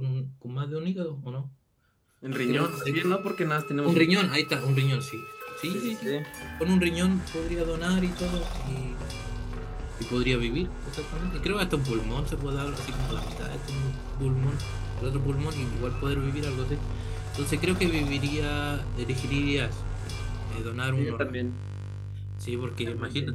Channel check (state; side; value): identical; both; correlation 1.00